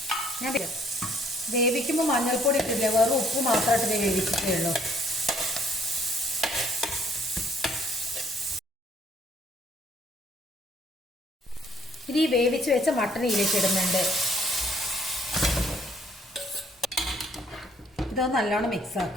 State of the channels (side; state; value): both; normal; correlation 0.64